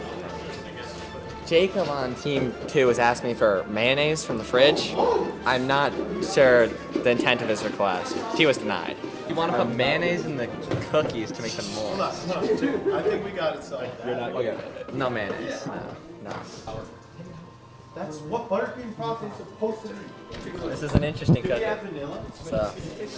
Jacob on Team 2 has asked me for mayonnaise from the fridge. I'm not sure the intent of his request. He was denied. You want to put mayonnaise in the cookies to make them moist. Dude, I think we got it solved. You're not okay. No mayonnaise. No. That's what buttercream frosting is supposed to be. This is an interesting cookie. So.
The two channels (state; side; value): identical; both; correlation 1.00